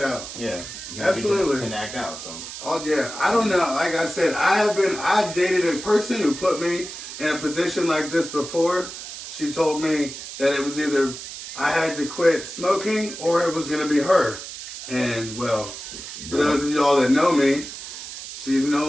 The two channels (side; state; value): right; noise; hiss, 10 dB below the sound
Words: Yeah. Absolutely. Can act out, so. Oh yeah, I don't know. Like I said, I dated a person who put me in a position like this before. She told me that it was either I had to quit smoking or it was gonna be her. And well, for those of y'all that know me, she's no